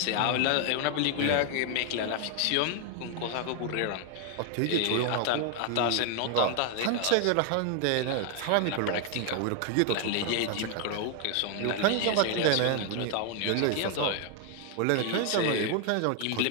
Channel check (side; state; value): both; different; correlation 0.00